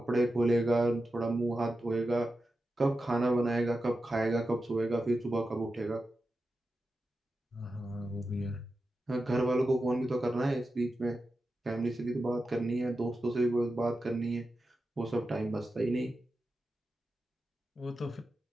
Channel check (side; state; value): both; normal; correlation 0.91